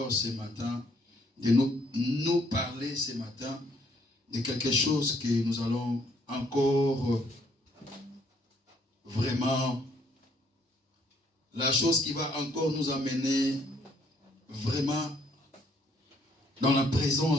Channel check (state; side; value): normal; both; correlation 0.67